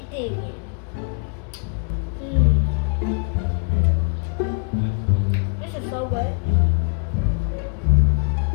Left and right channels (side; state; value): right; quieter; 39.2 dB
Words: digging. This is so good.